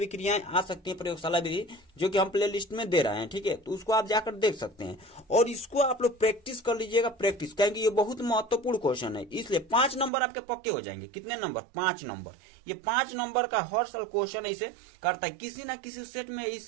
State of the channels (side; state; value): left; drops out; at 10.1 s